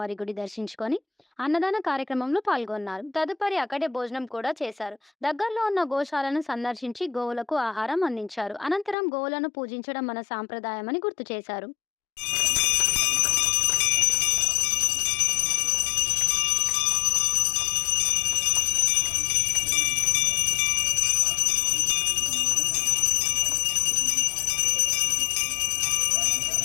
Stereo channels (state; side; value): drops out; right; at 9.0 s